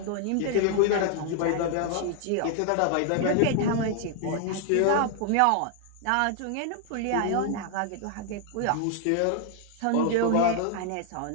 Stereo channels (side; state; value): both; different; correlation 0.00